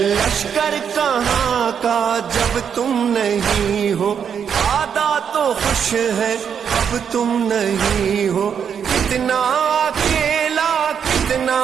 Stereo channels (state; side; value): quieter; left; 7.6 dB